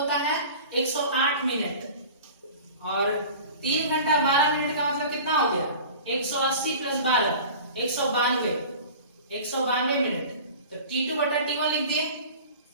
है 108 मिनट, और 3 घंटा 12 मिनट का मतलब कितना हो गया, 180 + 12 192 मिनट। तो T2/T1 लिख दिए।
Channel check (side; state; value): both; inverted; correlation -0.39